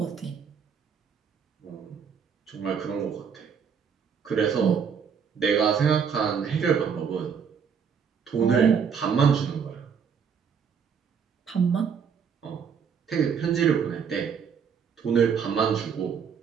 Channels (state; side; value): quieter; left; 6.8 dB